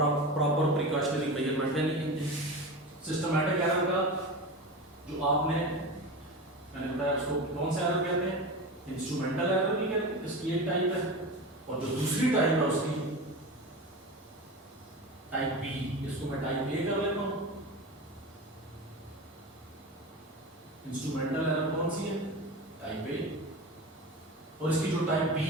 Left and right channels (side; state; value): both; normal; correlation 0.27